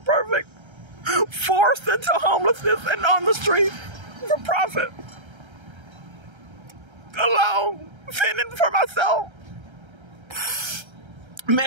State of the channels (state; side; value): late; left; 1.3 ms